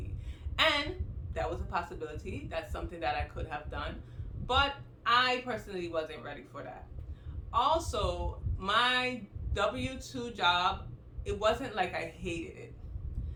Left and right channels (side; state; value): both; identical; correlation 1.00